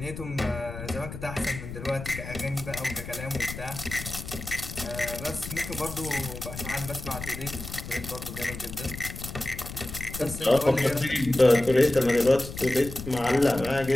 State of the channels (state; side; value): noise; left; rumble, 10 dB below the sound